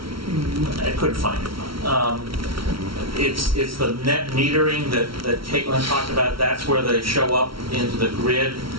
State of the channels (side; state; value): left; late; 0.74 ms